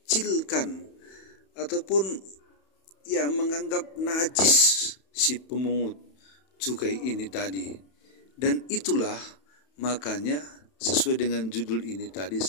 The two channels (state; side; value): late; right; 31 ms